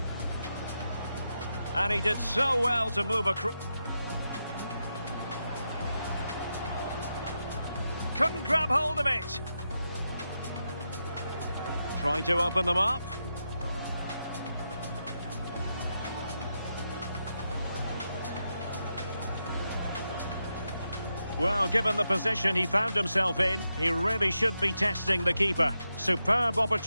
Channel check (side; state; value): both; inverted; correlation -0.86